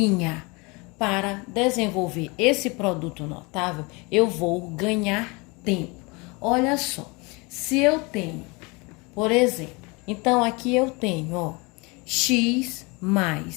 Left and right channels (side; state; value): right; quieter; 27.5 dB